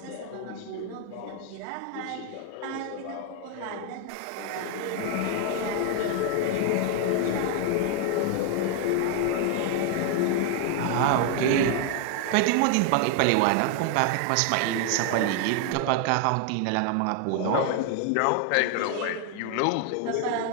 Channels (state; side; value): different; both; correlation 0.00